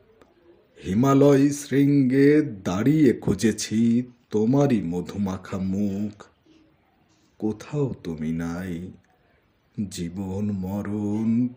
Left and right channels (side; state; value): both; identical; correlation 1.00